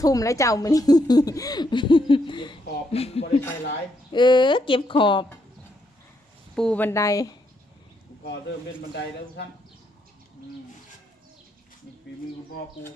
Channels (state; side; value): normal; both; correlation 0.76